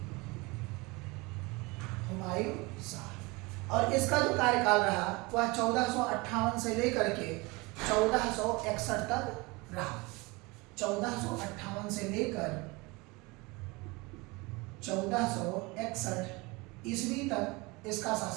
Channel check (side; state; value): left; quieter; 25.1 dB